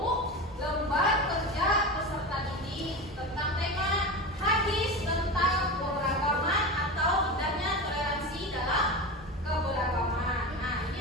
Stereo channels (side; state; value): both; normal; correlation 0.25